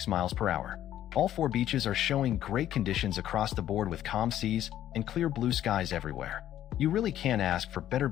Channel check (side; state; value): right; quieter; 12.0 dB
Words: miles per hour. All 4 beaches are showing great conditions across the board with calm seas and clear blue skies everywhere. You really can't ask for better